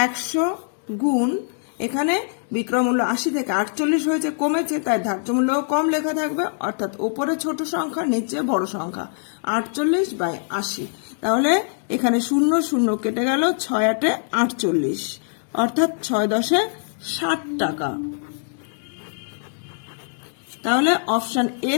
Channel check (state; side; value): silent; right; digital silence